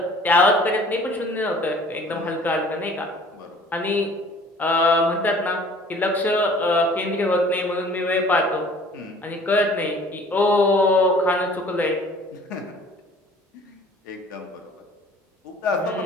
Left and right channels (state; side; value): normal; both; correlation 0.51